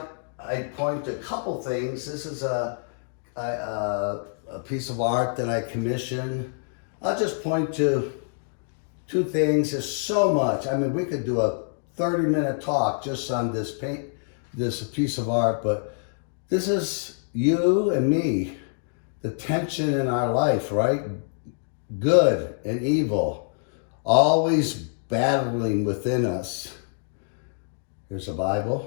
I'd point to a couple things. This is a piece of art that I commissioned. I'll just point to two things. There's so much. I mean, we could do a 30-minute talk just on this piece of art, but this is you and me, the tension in our life, right? Good and evil, always battling within us. Here's a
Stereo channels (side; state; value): right; silent; digital silence